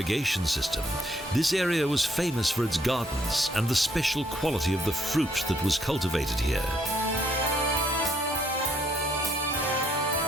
system, this area was famous for its gardens and the special quality of the fruit that was cultivated here.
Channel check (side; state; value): both; normal; correlation 0.69